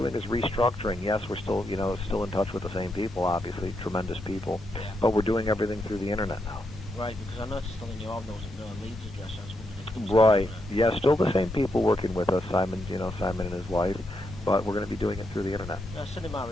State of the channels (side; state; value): both; normal; correlation 0.81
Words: is restructuring. Yes, we're still, still in touch with the same people, obviously, tremendous people, Yeah. but we're doing everything through the internet now. Right, because I noticed on the new album there wasn't no Leeds address. I was wondering if there was Right. something Yeah, still the same people working with us. Simon and his wife, but we're going to be doing it through the internet. send him my